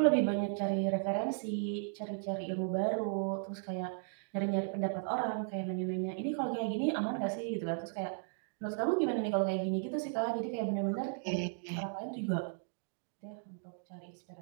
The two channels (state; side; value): silent; left; digital silence